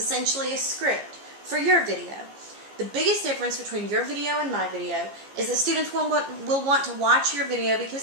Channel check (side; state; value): left; late; 15 ms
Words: a script for your video. The biggest difference between your video and my video is that students will want to watch your video